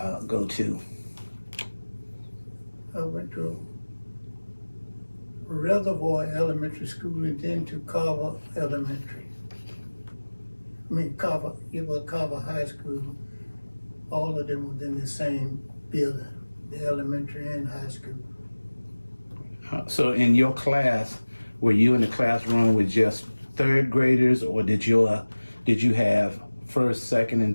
to? I went to Reservoir Elementary School and then to Carver Elementary. Carver, it was Carver High School. All of them was in the same building, the elementary and high school. So in your class, were you in the classroom with just third graders, or did you have first, second,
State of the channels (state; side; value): inverted; both; correlation -1.00